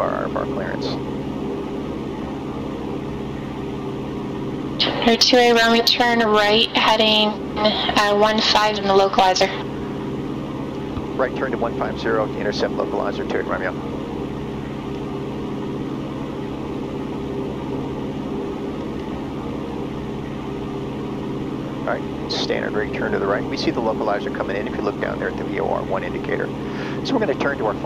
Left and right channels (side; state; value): both; identical; correlation 1.00